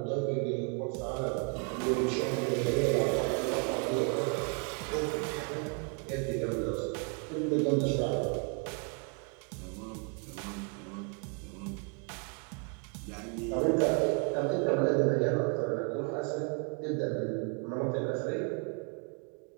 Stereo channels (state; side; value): quieter; left; 37.8 dB